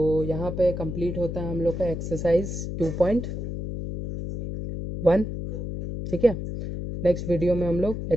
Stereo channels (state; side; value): noise; left; hum, 5 dB below the sound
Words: यहाँ पे कंप्लीट होता है हम लोग का एक्सरसाइज 2.1। ठीक है, नेक्स्ट वीडियो में हम लोग